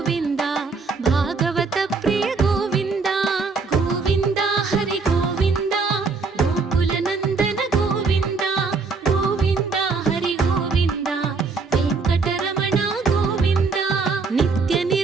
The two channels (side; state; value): left; quieter; 4.4 dB